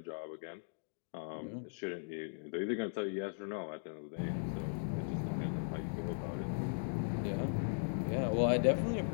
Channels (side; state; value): right; silent; digital silence